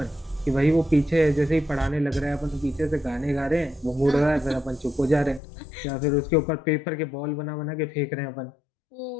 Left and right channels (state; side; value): drops out; right; at 5.4 s